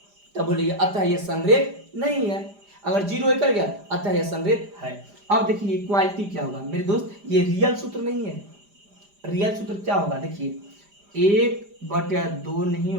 तब बोलिए अतः यह संरेख नहीं है। अगर 0 कर गया अतः यह संरेख है। अब देखिए इक्वालिटी क्या होगा मेरे दोस्त, ये रियल सूत्र नहीं है। रियल सूत्र क्या होगा देखिए 1/2 नहीं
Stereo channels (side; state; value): left; late; 5.0 ms